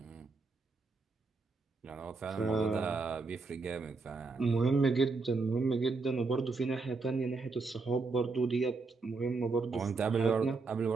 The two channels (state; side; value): quieter; left; 4.0 dB